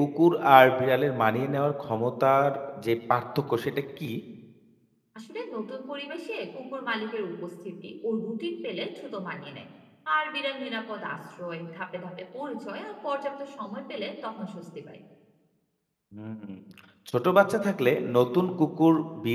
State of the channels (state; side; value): identical; both; correlation 1.00